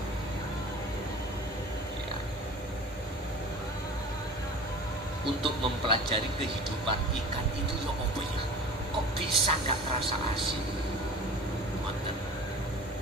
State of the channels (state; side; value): normal; both; correlation 0.40